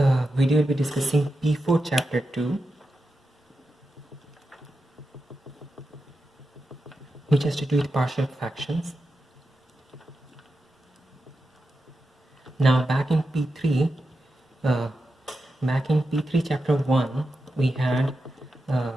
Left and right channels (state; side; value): normal; both; correlation 0.89